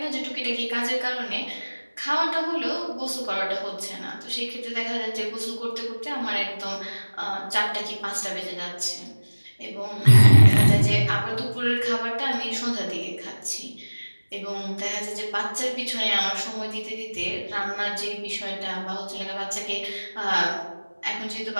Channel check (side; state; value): both; inverted; correlation -1.00